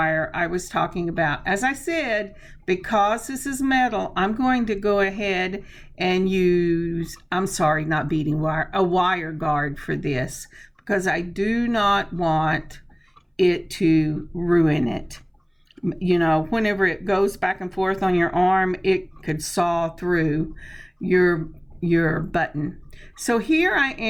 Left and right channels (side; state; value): both; identical; correlation 1.00